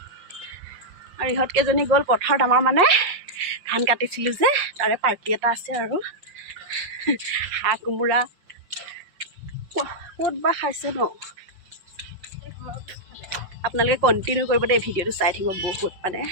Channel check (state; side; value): late; left; 5.5 ms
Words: আৰু ইহঁতকেইজনী গ'ল পথাৰত আমাৰ মানে ধান কাটিছিলোঁ যে তাৰে পাৰ্টি এটা আছে আৰু হাঁহ কোমোৰা ক'ত বা খাইছে ন আপোনালোকে কণ্টিনিউ কৰিব দেই ভিডিঅ'টো চাই থাকিব বহুত মানে